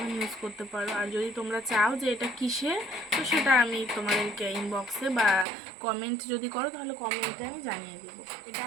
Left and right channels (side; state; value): left; drops out; at 5.5 s